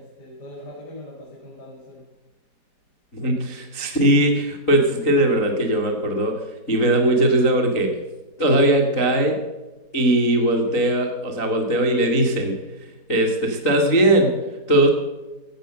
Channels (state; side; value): late; right; 4.0 ms